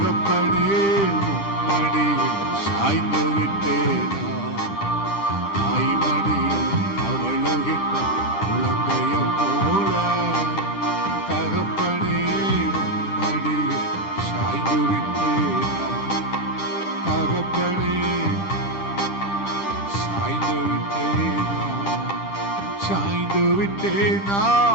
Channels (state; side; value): late; right; 10 ms